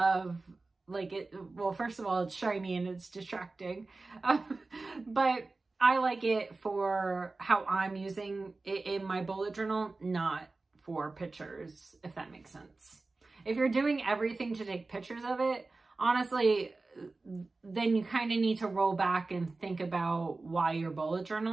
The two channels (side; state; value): left; quieter; 3.5 dB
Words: like it, well, first of all, it's shiny and it's distracting, but I like it for how I'm using it in my bullet journal, not for pictures, if that makes sense. If you're doing everything to take pictures of it, honestly, then you kind of need to roll back and think about why you're bullet